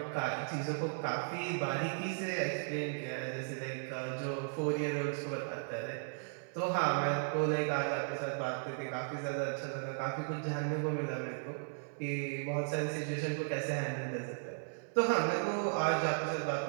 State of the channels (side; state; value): left; silent; 54 dB below the other